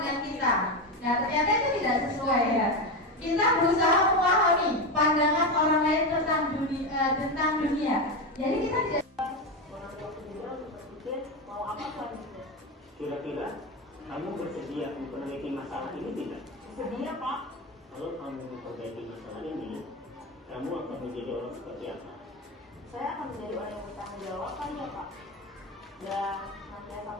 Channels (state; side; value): normal; both; correlation 0.16